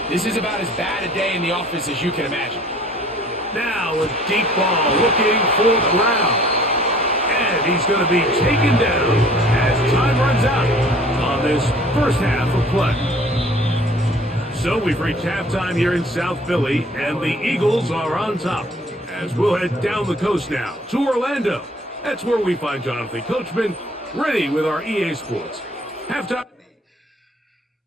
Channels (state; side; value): normal; both; correlation 0.53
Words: this is about as bad a day in the office as you can imagine. Now a deep ball looking for Browne. And he's going to be taken down as time runs out on this 1st half of play. So we've reached halftime here in South Philly, and the Eagles are on top. As we'll head down the coast now to Orlando. That's where we find Jonathan Coachman ready with our EA Sports halftime.